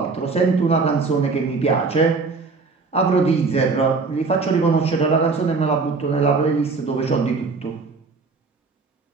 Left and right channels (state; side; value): quieter; left; 4.3 dB